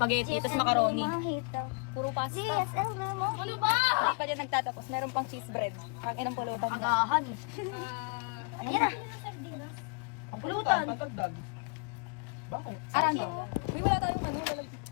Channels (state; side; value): quieter; right; 38.2 dB